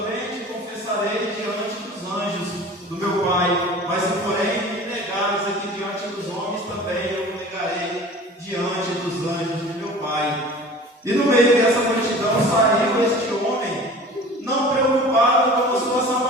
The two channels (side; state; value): both; normal; correlation 0.42